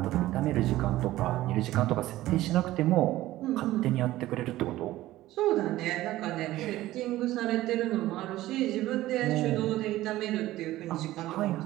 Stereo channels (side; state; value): left; quieter; 15.9 dB